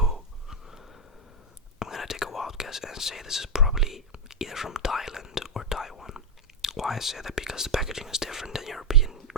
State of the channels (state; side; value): normal; both; correlation 0.02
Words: I'm gonna take a wild guess and say this is probably either from Thailand or Taiwan. Why I say that? Because the packaging is different than European